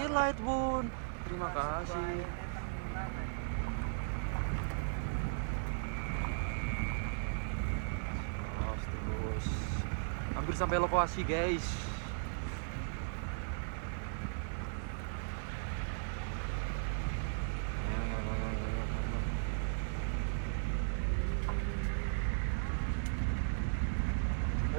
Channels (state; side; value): silent; left; digital silence